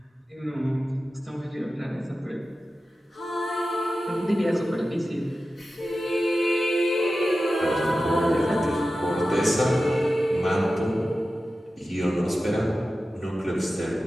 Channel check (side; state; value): both; normal; correlation 0.93